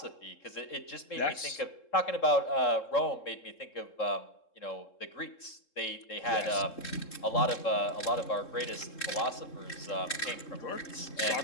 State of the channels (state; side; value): late; right; 3.7 ms